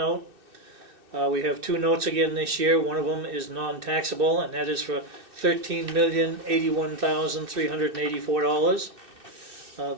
We have two notes again this year. One of them is non-taxable, and that is for $13,081,384.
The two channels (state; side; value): late; left; 2.6 ms